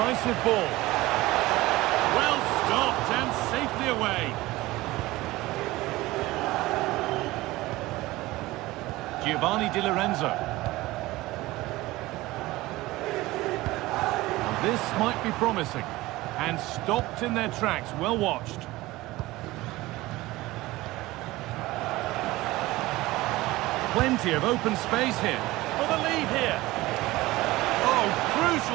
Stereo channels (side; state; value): left; quieter; 18.9 dB